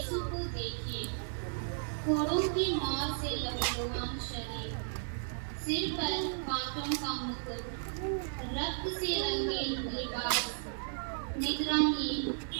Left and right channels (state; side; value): silent; left; 55 dB below the other